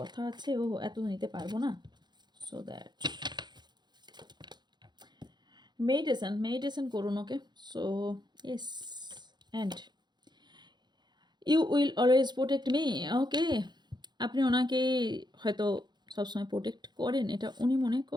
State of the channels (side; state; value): left; late; 0.21 ms